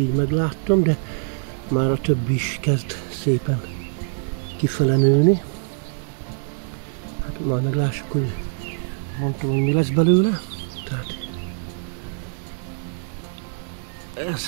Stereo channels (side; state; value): left; silent; digital silence